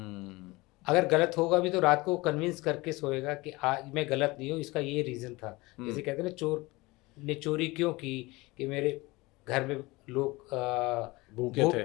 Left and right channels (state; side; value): quieter; right; 22.3 dB